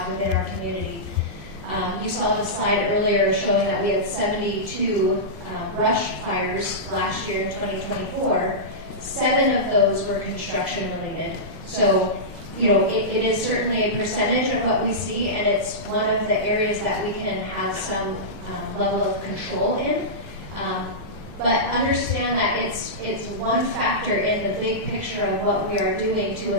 within our community. You saw the slide earlier showing that we had 72 brush fires last year in 2024. 7 of those were construction related. So, you know, it is certainly a percentage of what we see, and it's one of the areas that we can have some level of control in. But understand that it's one factor in the big picture of what we are doing to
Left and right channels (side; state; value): both; normal; correlation -0.15